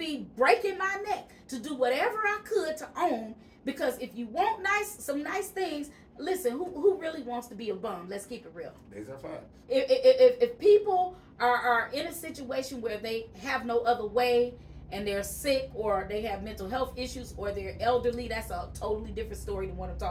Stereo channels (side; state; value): both; identical; correlation 1.00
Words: breaking my neck to do whatever I could to own, because if you want some nice things, listen, who really wants to be a bum? Let's keep it real. These are facts. If people are in a situation where they have no other way and they're sick or they have mental health issues or they're elderly, that's a totally different story than what I'm